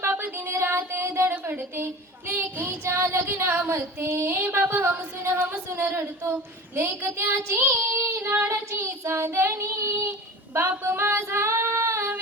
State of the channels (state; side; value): normal; both; correlation 0.35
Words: बाप दिन रात धडपडते, लेकीच्या लग्नामध्ये बाप हमसून हमसून रडतो. लेक त्याची लाडाची चांदणी, बाप माझा